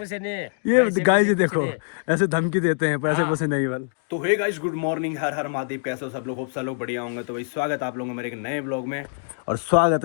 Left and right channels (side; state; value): right; silent; digital silence